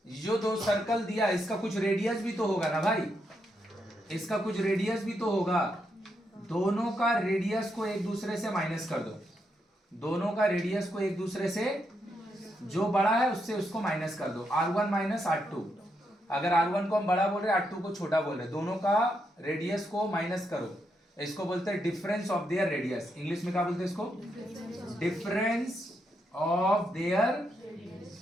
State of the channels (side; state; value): both; normal; correlation 0.81